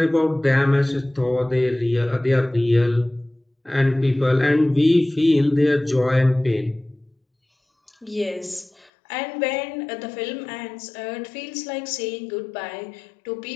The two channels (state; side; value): drops out; right; at 8.9 s